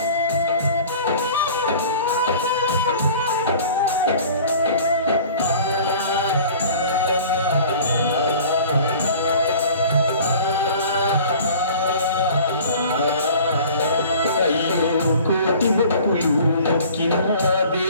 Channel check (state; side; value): inverted; both; correlation -0.46